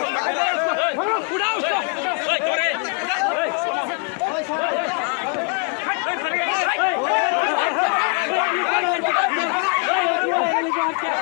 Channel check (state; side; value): quieter; right; 37.1 dB